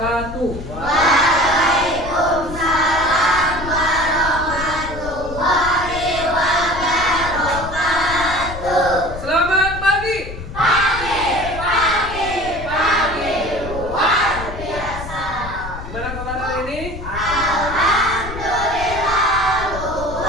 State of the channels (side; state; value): left; noise; rumble, 10 dB below the sound